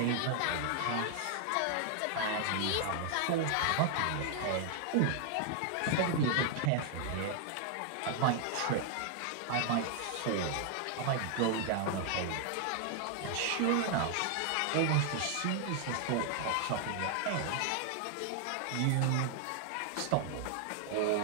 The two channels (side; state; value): both; different; correlation 0.00